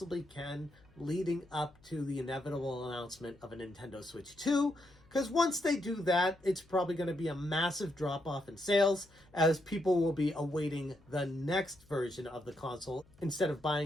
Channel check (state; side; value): noise; left; hum, 28 dB below the sound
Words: can, leading up to the inevitable announcement of a Nintendo Switch 2. Because once they do that, it's probably going to be a massive drop-off in sales, as people will be awaiting the next version of the console instead of